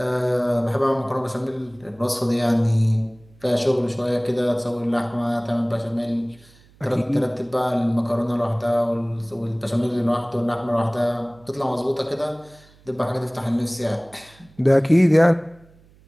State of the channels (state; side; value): noise; right; hum, 28 dB below the sound